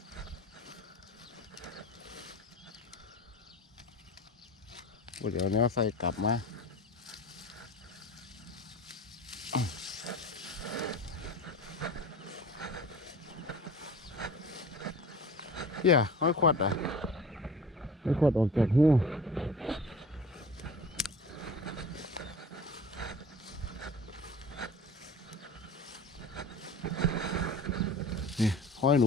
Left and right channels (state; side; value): normal; both; correlation 0.39